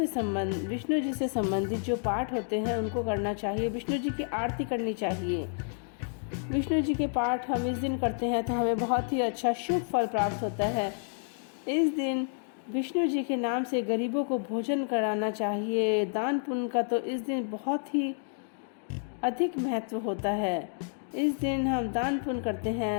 जी से संबंधित जो पाठ होते हैं उनको करना चाहिए। विष्णु जी की आरती करनी चाहिए। विष्णु जी के पाठ हम इस दिन करते हैं तो हमें बहुत ही अच्छा शुभ फल प्राप्त होता है। इस दिन विष्णु जी के नाम से गरीबों को भोजन कराना चाहिए। दान पुण्य का तो इस दिन बहुत ही अधिक महत्व होता है। इस दिन हम दान पुण्य करते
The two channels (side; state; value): right; silent; 58 dB below the other